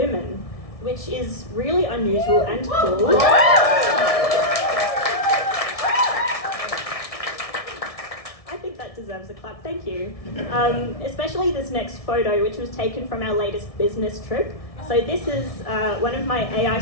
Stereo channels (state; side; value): late; right; 1.6 ms